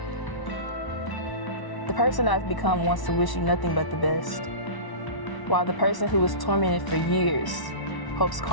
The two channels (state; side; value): late; right; 1.0 ms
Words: The person I've become wants to wish you nothing but the best, while the person who was tormented for years hopes